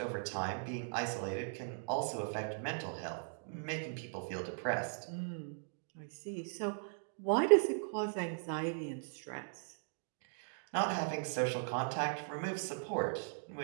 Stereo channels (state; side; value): silent; left; digital silence